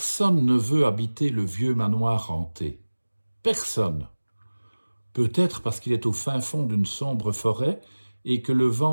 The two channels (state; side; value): inverted; both; correlation -1.00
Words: ne veut habiter le vieux manoir hanté. Personne. Peut-être parce qu'il est au fin fond d'une sombre forêt et que le